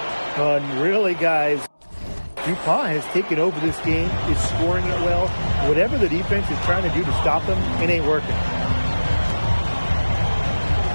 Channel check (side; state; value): both; inverted; correlation -1.00